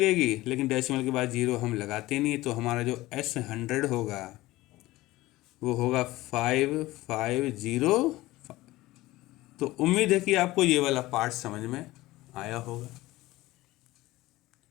लेकिन डेसिमल के बाद 0 हम लगाते नहीं, तो हमारा जो S100 होगा वो होगा 5505। तो उम्मीद है कि आपको ये वाला पार्ट समझ में आया होगा।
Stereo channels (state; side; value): quieter; right; 18.2 dB